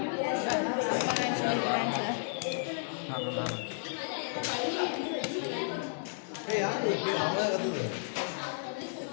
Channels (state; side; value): silent; right; digital silence